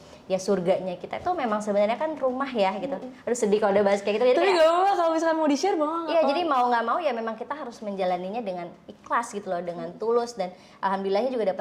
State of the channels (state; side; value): identical; both; correlation 1.00